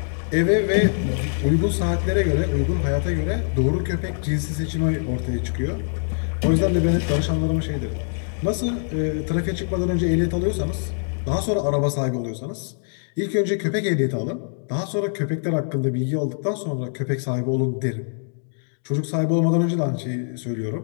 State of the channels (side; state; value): right; silent; digital silence